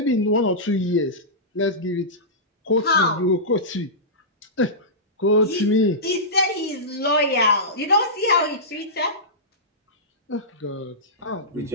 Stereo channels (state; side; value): normal; both; correlation -0.16